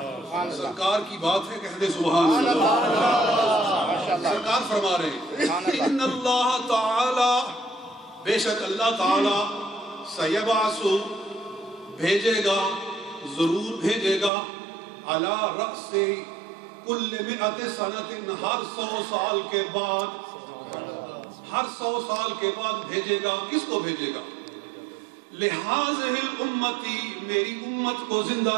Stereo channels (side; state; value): left; drops out; at 14.3 s